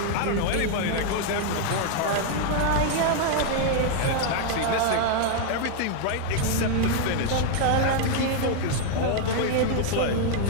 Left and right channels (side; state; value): both; different; correlation 0.00